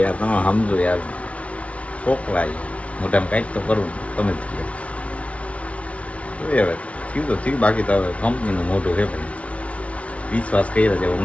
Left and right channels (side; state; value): right; late; 0.064 ms